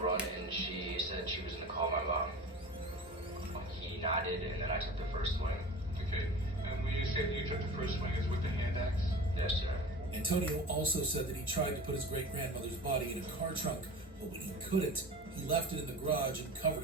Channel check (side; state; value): both; normal; correlation 0.36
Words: run and she said she was going to call my mom. He nodded and then I took the first swing. Okay, and when you say you took the first swing, is with the hand axe? Yes, sir. Antonio also said that he tried to put his great-grandmother's body in a car trunk, but when he couldn't, he left it in the garage and covered